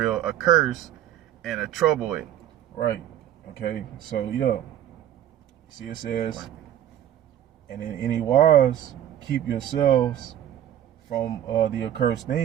a curse and a trouble it. Right, okay, so see it says, and in any wise keep yourselves from the accursed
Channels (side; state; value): left; quieter; 11.3 dB